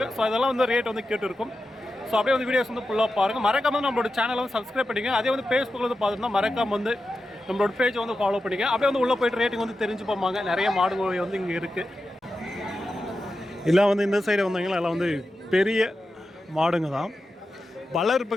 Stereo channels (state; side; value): normal; both; correlation 0.91